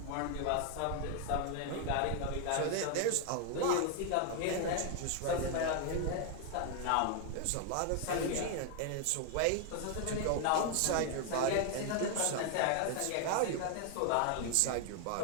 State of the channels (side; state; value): both; different; correlation 0.00